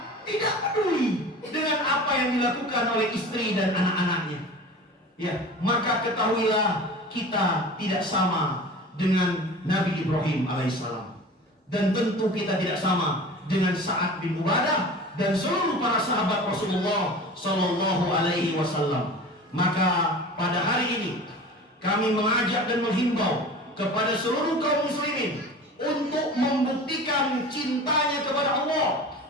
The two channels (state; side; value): normal; both; correlation 0.37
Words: tidak peduli dengan apa yang dilakukan oleh istri dan anak-anaknya. Ya, maka ketahuilah kita tidak sama dengan Nabi Ibrahim alaihissalam, dan tentu kita tidak sama dengan Sa'ad bin Ubadah dan seluruh para sahabat Rasulullah Sallallahu Alaihi Wasallam. Maka pada hari ini kami mengajak dan menghimbau kepada seluruh kaum muslimin untuk membuktikan cintanya kepada Allah,